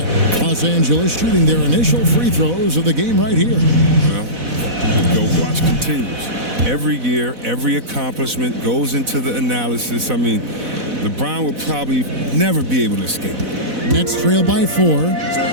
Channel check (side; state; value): left; late; 4.0 ms